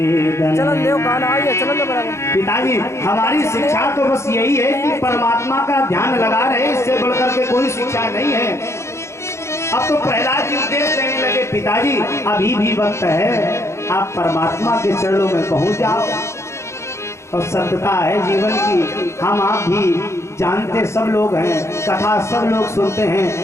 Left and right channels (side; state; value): right; late; 0.13 ms